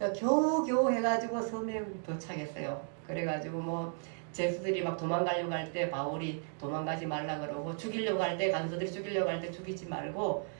겨우 해가지고 섬에 도착했어요. 그래가지고 뭐 제수들이 막 도망가려고 할 때 바울이 도망가지 말라 그러고 죽이려고 할 때 간수들이 죽이려고 할 때 죽이지 말고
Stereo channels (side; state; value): left; silent; 55 dB below the other